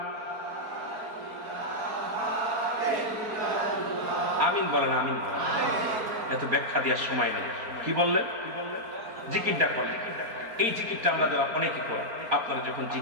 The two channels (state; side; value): late; left; 4.4 ms